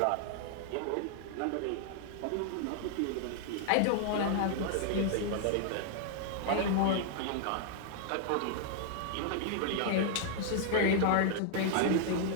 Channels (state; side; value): different; both; correlation -0.01